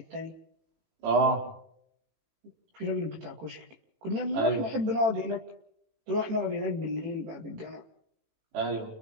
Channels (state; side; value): late; left; 18 ms